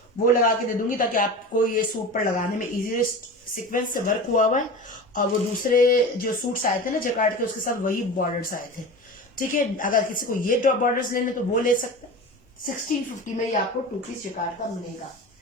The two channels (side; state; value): both; normal; correlation 0.31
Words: वो लगा के दे दूंगी ताकि आपको ये सूट पर लगाने में इजी, सीक्वेंस से वर्क हुआ हुआ है। और वो दूसरे जो सूट्स आए थे ना जैकार्ड के, उसके साथ वही बॉर्डर्स आए थे, ठीक है। अगर किसी को ये बॉर्डर्स लेने तो वो ले सकते हैं। 1650 में ये आपको 2 पीस जैकार्ड का मिलेगा।